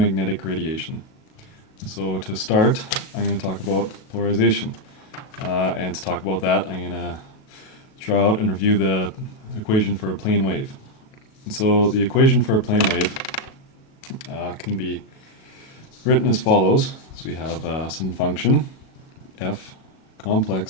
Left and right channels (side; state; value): right; late; 37 ms